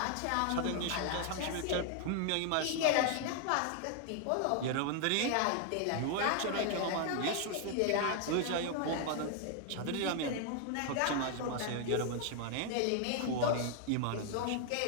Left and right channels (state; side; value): different; both; correlation 0.00